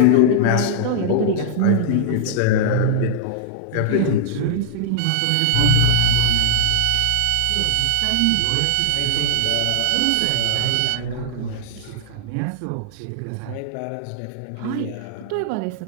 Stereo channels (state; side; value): different; both; correlation -0.01